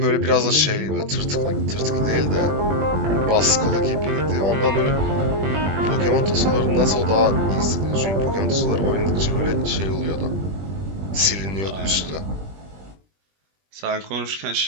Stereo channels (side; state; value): left; late; 20 ms